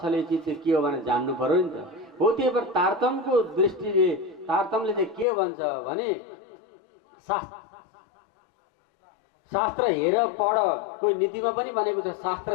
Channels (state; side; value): drops out; right; at 5.2 s